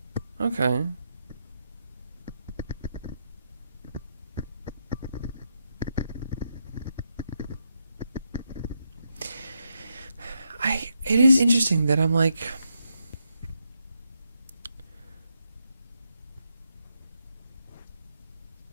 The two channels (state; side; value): inverted; both; correlation -0.82